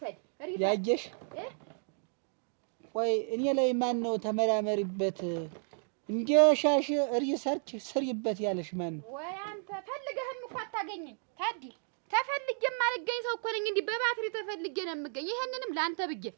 ያየሽ ቆይ እኔ ላይ ማን ነው ተመራመሪበት እንዲሻሽ ሪሰርች ስሪበት ያለሽ ማን ነው ወይ አንተ ፈልገህም እኮ አታገኝኝ ታዲ ተፈልጌም አልገኝ ሰው እኮ ነኝ እንዴ በባትሪ ተፈልጌ ነው የምገኝ ይሄንንም ላንተ ብዬ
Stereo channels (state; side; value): silent; left; 56 dB below the other